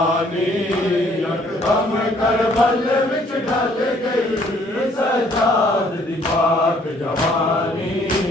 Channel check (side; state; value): both; normal; correlation 0.62